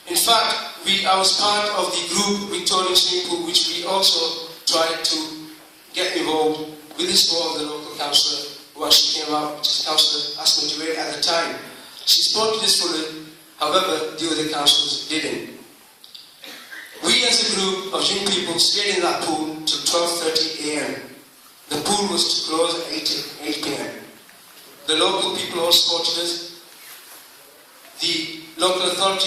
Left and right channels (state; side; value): identical; both; correlation 1.00